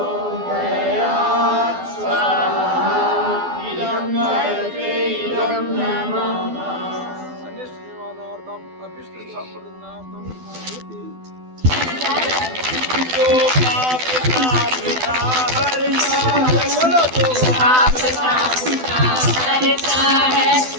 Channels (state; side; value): late; left; 12 ms